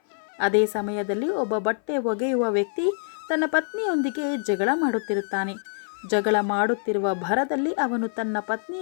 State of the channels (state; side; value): silent; right; 58 dB below the other